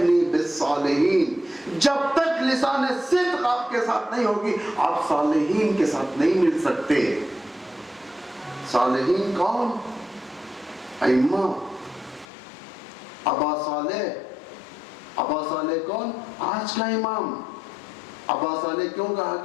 بِالصَّالِحِينَ. جب تک لسان صدق آپ کے ساتھ نہیں ہوگی آپ صالحین کے ساتھ نہیں مل سکتے. صالحین کون؟ ائمہ. ابا صالح. ابا صالح کون؟ آج کا امام. ابا صالح کیوں کہا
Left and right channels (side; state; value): right; drops out; at 12.2 s